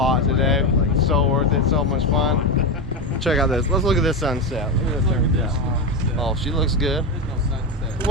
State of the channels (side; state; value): both; normal; correlation 0.14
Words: today. So worth it. So much fun. Check out this. Let's look at this sunset. Look at this sunset. Oh, she looks good.